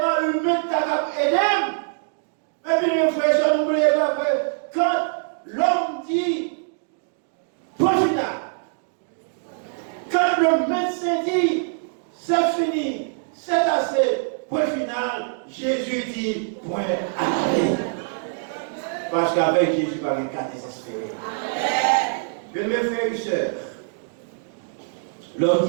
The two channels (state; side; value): silent; left; digital silence